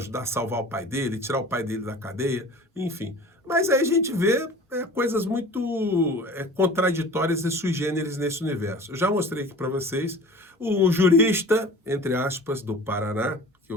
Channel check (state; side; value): normal; both; correlation 0.41